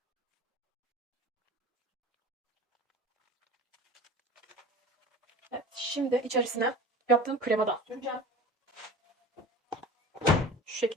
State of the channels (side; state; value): both; normal; correlation 0.37